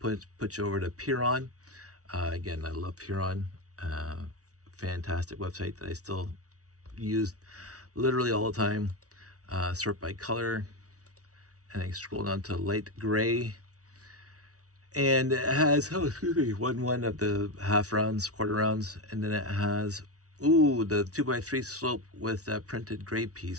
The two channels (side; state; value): left; late; 0.67 ms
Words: you over to Piron. Again, I love Piron. Fantastic website that I still use literally all the time. Sort by color, and I scroll down to light gray. And it has, oh, excuse me, one of the half rounds, quarter rounds, and then it has, ooh, the 2x3 slope with that printed gray